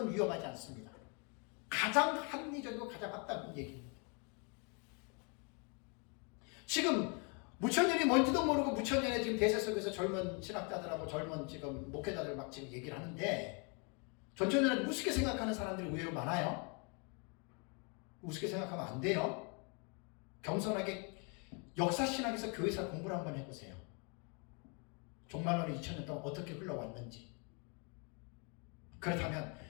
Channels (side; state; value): right; quieter; 35.2 dB